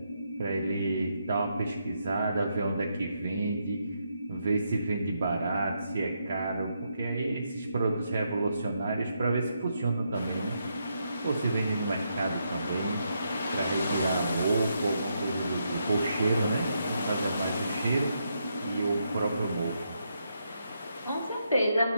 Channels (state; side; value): inverted; both; correlation -0.80